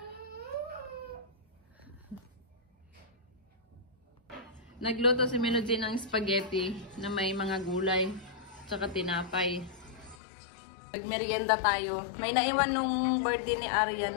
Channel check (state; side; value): drops out; right; at 10.2 s